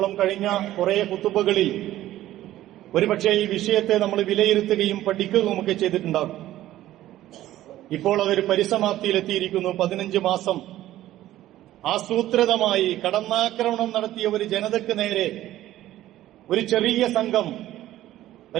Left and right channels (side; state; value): left; quieter; 14.2 dB